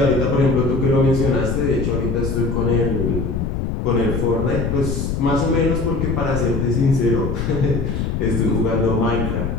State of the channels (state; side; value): noise; left; rumble, 2 dB below the sound